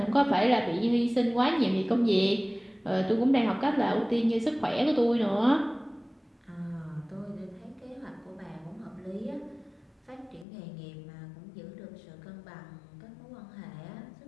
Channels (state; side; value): drops out; right; at 10.5 s